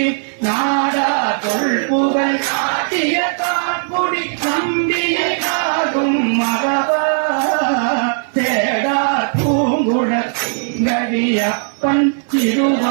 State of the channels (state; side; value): silent; left; 58 dB below the other